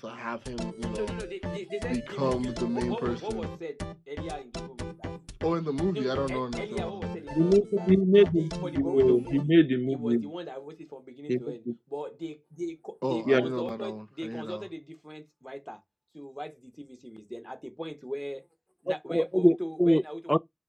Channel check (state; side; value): identical; both; correlation 1.00